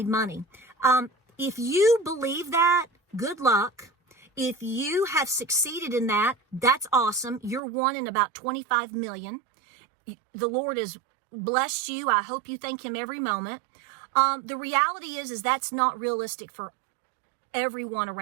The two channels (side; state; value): left; drops out; at 7.6 s